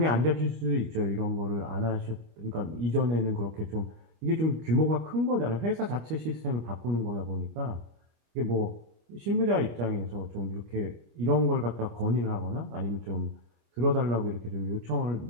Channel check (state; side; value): late; left; 25 ms